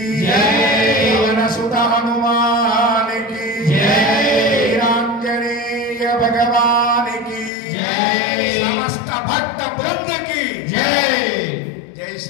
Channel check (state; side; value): drops out; right; at 7.5 s